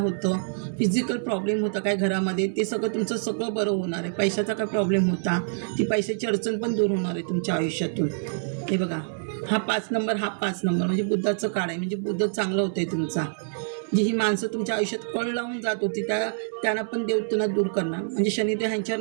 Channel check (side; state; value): left; silent; digital silence